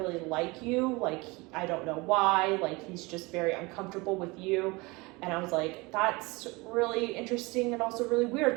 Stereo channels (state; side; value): quieter; left; 24.9 dB